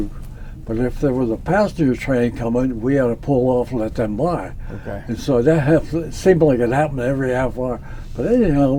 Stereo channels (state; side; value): identical; both; correlation 1.00